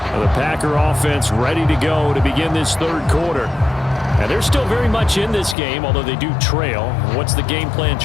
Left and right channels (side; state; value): right; drops out; at 5.6 s